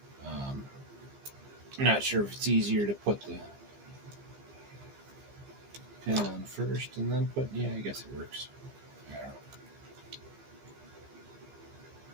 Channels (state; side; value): late; left; 15 ms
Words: I'm not sure if it's easier to put the pin on first and then put, yeah, I guess it works. I don't know.